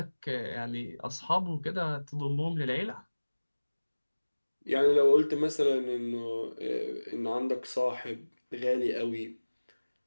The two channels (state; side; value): inverted; both; correlation -1.00